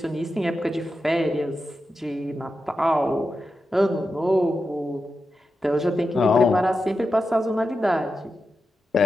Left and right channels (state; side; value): normal; both; correlation 0.90